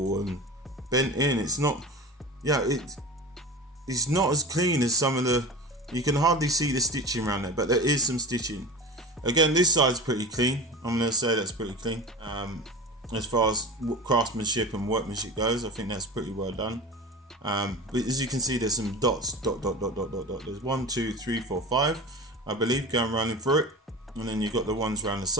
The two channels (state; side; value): normal; both; correlation 0.31